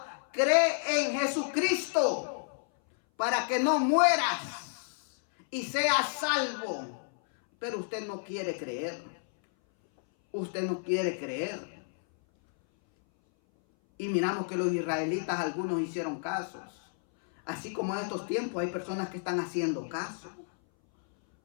cree en Jesucristo para que no mueras y seas salvo. Pero usted no quiere creer. Usted no quiere creer. Y miramos que los israelitas, algunos hicieron casos. Así como en estos tiempos hay personas que están haciendo caso.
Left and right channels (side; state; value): right; silent; 57 dB below the other